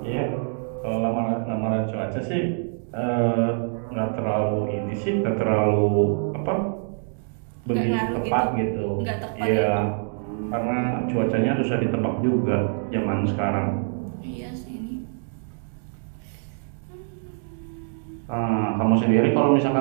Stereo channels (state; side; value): silent; left; 62 dB below the other